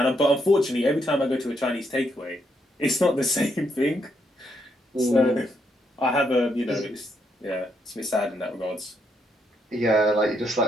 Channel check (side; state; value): both; normal; correlation 0.76